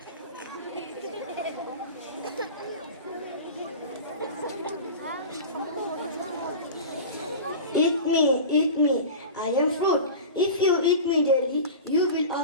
Eat me, eat me. I am fruit. If you eat me daily, you will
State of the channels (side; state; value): both; inverted; correlation -0.31